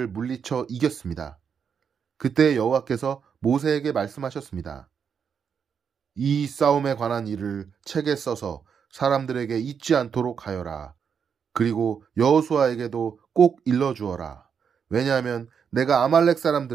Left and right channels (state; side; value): quieter; left; 6.9 dB